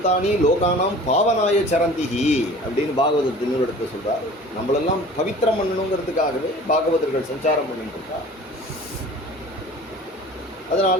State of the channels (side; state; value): both; normal; correlation 0.44